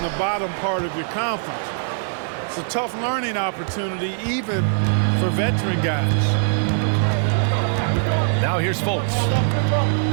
the bottom part of your conference. It's a tough learning opportunity, even for veteran guys. Now here's Fultz.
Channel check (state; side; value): silent; left; 64 dB below the other